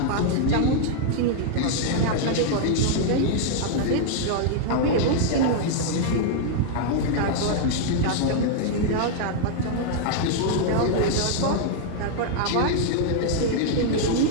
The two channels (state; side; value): different; both; correlation -0.01